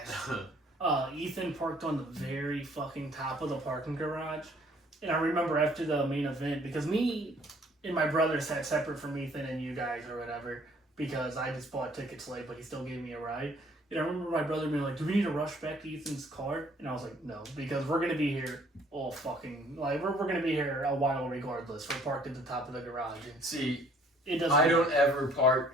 Ethan parked on the very fucking top of the parking garage. And I remember after the main event, because me and my brother sat separate from Ethan and you guys or whatever, because I just bought tickets late, but he still gave me a ride. And I remember my brother being like, "Do we need to rush back to Ethan's car?" And I was like, "No, because we're going to be here all fucking, like, we're going to be here a while regardless. We're parked at the top of the garage." And see, it doesn't I don't ever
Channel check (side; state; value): both; normal; correlation 0.59